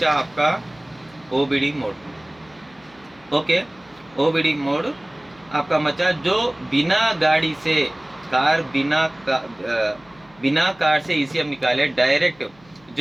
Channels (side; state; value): left; noise; hum, 28 dB below the sound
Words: आपका OBD mode. Okay, OBD mode आपका बचा जो बिना गाड़ी से कार बिना कार से ईसीएम निकाले डायरेक्ट